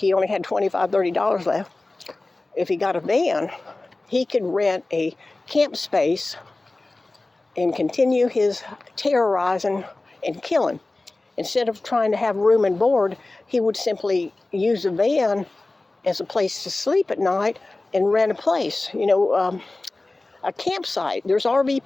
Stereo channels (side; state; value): right; quieter; 3.1 dB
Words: only had $25, $30 left. If he got a van, he could rent a camp space and continue his terrorizing and killing. Instead of trying to have room and board, he would simply use a van as a place to sleep at night and rent a place, a campsite. There's RV